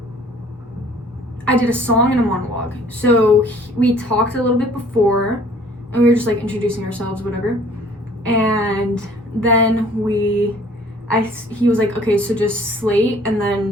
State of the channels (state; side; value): normal; both; correlation 0.54